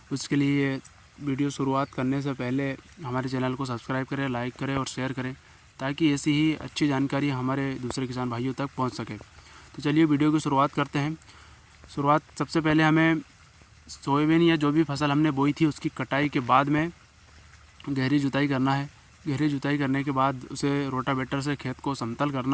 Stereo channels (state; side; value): identical; both; correlation 1.00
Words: उसके लिए वीडियो शुरुआत करने से पहले हमारे चैनल को सब्सक्राइब करें, लाइक करें और शेयर करें, ताकि ऐसी ही अच्छी जानकारी हमारे दूसरे किसान भाइयों तक पहुँच सके। तो चलिए वीडियो की शुरुआत करते हैं। सबसे पहले हमें सोयाबीन या जो भी फसल हमने बोई थी उसकी कटाई के बाद में गहरी जुताई करना है। गहरी जुताई करने के बाद उसे रोटावेटर से खेत को समतल